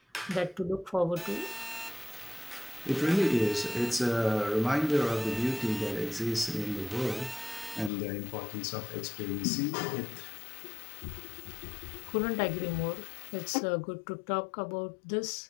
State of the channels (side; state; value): right; drops out; at 7.9 s